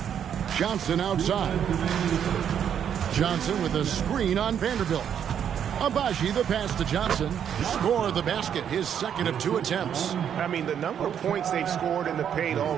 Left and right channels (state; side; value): quieter; left; 8.8 dB